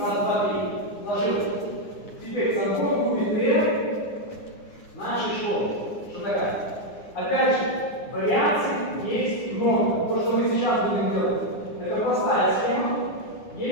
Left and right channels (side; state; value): right; late; 9.8 ms